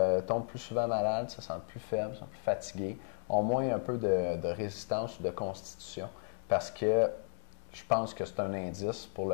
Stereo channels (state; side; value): silent; right; digital silence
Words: tombent plus souvent malades, se sentent plus faibles, sont plus fatigués, ont moins un peu de résistance ou de constitution, parce que je pense que c'est un indice pour